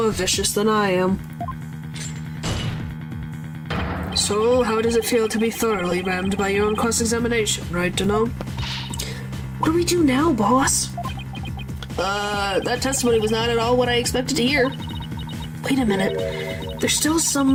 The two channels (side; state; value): both; identical; correlation 1.00